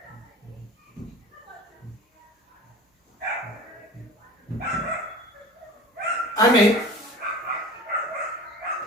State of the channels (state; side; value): normal; both; correlation 0.38